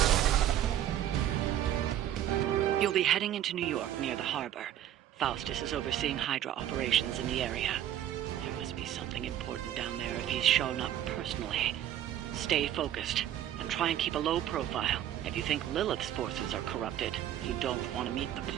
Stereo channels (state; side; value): quieter; left; 11.5 dB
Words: You'll be heading into New York near the harbor. Faustus is overseeing Hydra operations in the area. There must be something important down there if he's shown up personally. Stay focused, and try and keep a low profile. If you think Lilith's forces are corrupted, you don't want to meet the